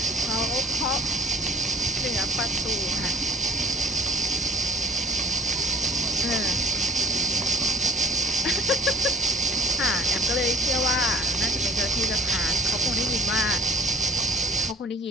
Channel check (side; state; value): both; normal; correlation 0.44